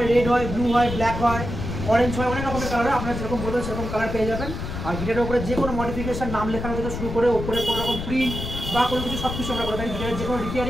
রেড হয়, ব্লু হয়, ব্ল্যাক হয়, অরেঞ্জ হয়, অনেক রকমের কালার হয়। আপনারা যেরকম বলবেন সেরকম কালার পেয়ে যাবেন। আর গিটারের উপরে যে কোনো মডিফিকেশন, নাম লেখানো থেকে শুরু করে ওপরে কোনো রকম প্রিন্ট বা কোনো কিছু সব কিছু আমরা করে থাকি। গিটারের যে কোনো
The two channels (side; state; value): left; noise; rumble, 6 dB below the sound